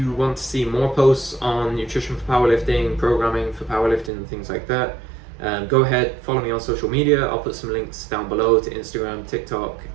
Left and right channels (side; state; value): left; drops out; at 4.1 s